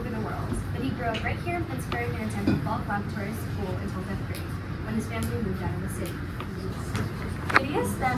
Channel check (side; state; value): both; identical; correlation 1.00